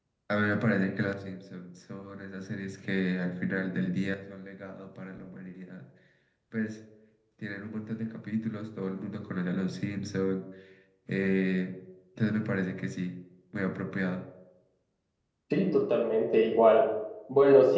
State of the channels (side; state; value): both; identical; correlation 1.00